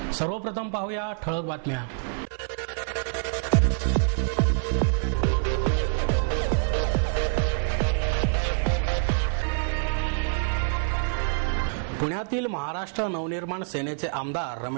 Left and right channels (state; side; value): silent; left; 61 dB below the other